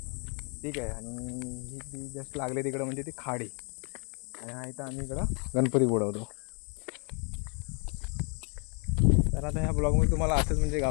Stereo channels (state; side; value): quieter; right; 37.0 dB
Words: ठीक आहे. आणि ही ती जस्ट लागले तिकडं म्हणजे ती खाडी आणि हा इथं आम्ही इकडं गणपती बुडवतो. तर आता ह्या ब्लॉगमध्ये तुम्हाला असंच म्हणजे